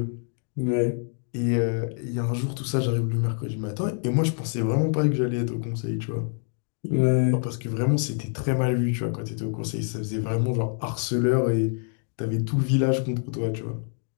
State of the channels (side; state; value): right; silent; 55 dB below the other